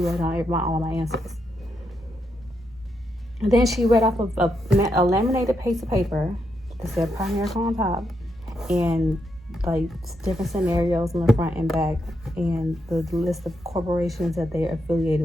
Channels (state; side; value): normal; both; correlation 0.81